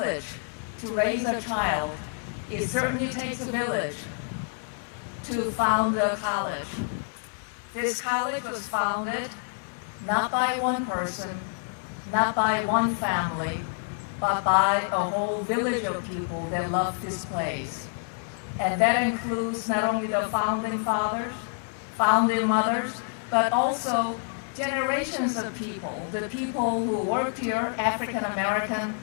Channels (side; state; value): right; silent; 60 dB below the other